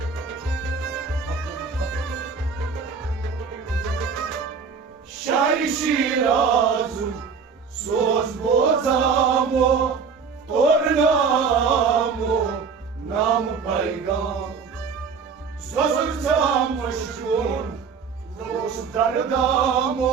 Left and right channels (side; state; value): left; quieter; 5.7 dB